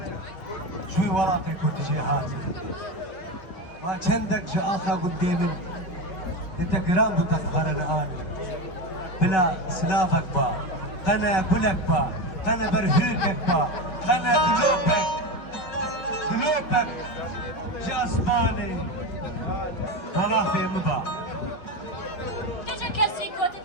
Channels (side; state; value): right; late; 5.6 ms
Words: شوی وراقی کودی جی هاتی ما چندک جا آخا قدامن انت قرام بتخبرنا آني بلا سلافك با قنا بلك با قنا برهوكك با قنا قلوبك جاسماني والله في مبا Gece kesi kötü